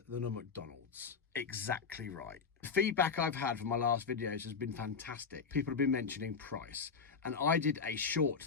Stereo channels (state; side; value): quieter; right; 5.6 dB